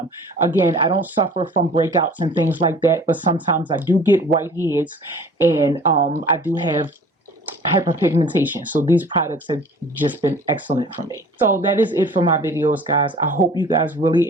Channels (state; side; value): normal; both; correlation 0.47